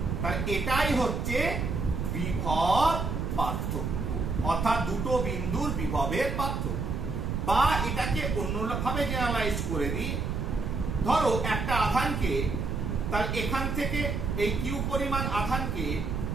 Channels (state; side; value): noise; right; rumble, 2 dB below the sound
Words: তাহলে এটাই হচ্ছে বিভব পার্থক্য, অর্থাৎ দুটো বিন্দুর বিভবের পার্থক্য। বা এটাকে অন্যভাবে জেনারেলাইজ করে দিই, ধরো একটা আধানকে, তাহলে এখান থেকে এই কিউ পরিমাণ আধানকে